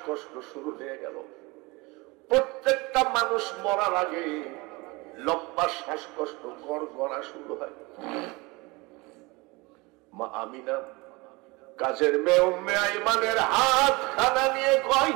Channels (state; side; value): quieter; left; 24.7 dB